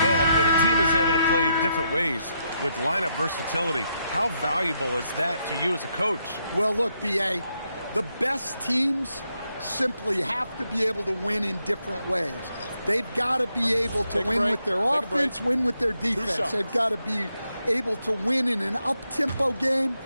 And when a team is able to play different ways with lineup versatility, how valuable is that to you as a coach? Well, look, B.A., the best teams simply have to be able to win in different ways. They've got to be able to win with their offense, win with their defense. They've got to be able to win in an up-tempo game.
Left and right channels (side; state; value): both; inverted; correlation -0.80